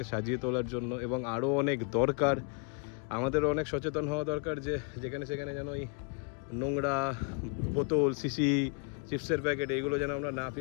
সাজিয়ে তোলার জন্য, এবং আরও অনেক দরকার। আমাদেরও অনেক সচেতন হওয়া দরকার যে যেখানে সেখানে যেন এই নোংরা বোতল, শিশি, চিপসের প্যাকেট এইগুলো যেন আমরা না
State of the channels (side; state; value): right; quieter; 36.2 dB